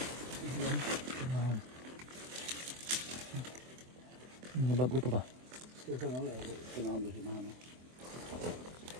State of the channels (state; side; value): late; left; 24 ms